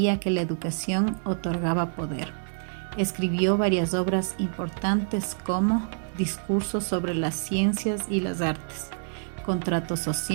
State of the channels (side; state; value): left; silent; 60 dB below the other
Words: que la educación otorgaba poder. Escribió varias obras importantes como Discursos sobre las ciencias y las artes, Contrato